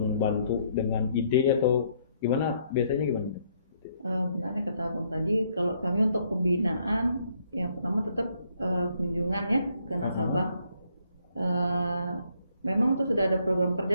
bantu dengan ide atau gimana, biasanya gimana? Benarnya kata Abang tadi, kalau kami untuk pembinaan yang pertama tetap kunjungan ya ke nasabah. Memang itu sudah ada program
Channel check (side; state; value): both; inverted; correlation -0.70